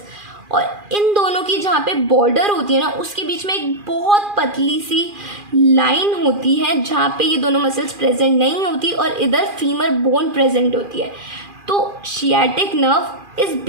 और इन दोनों की जहाँ पे बॉर्डर होती है ना उसके बीच में एक बहुत पतली सी लाइन होती है जहाँ पे ये दोनों मसल्स प्रेजेंट नहीं होती और इधर फीमर बोन प्रेजेंट होती है। तो सियाटिक नर्व इस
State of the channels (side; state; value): left; late; 2.4 ms